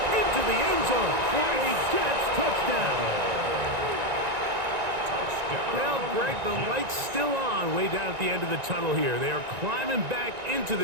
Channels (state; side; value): late; left; 1.9 ms